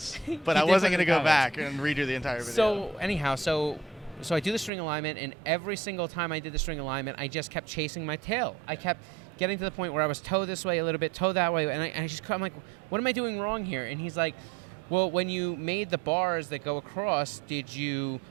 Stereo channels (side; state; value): left; drops out; at 4.7 s